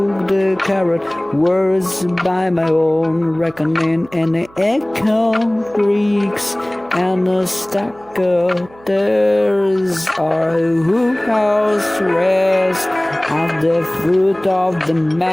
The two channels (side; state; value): right; noise; hum, 26 dB below the sound